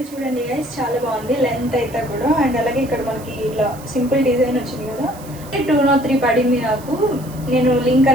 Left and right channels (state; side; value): noise; right; hiss, 20 dB below the sound